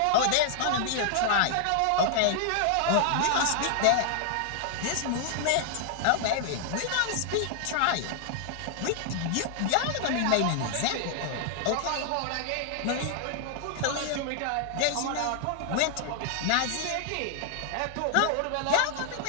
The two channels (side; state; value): both; different; correlation 0.00